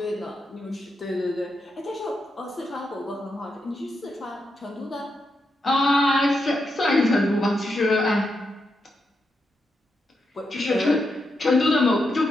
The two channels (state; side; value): normal; both; correlation 0.84